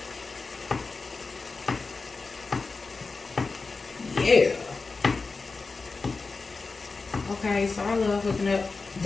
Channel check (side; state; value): right; quieter; 4.1 dB